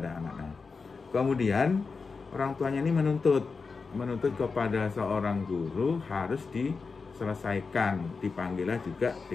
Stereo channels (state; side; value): quieter; right; 4.7 dB